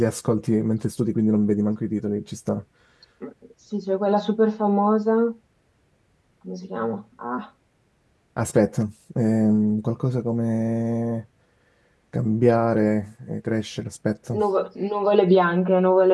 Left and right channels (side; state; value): both; identical; correlation 1.00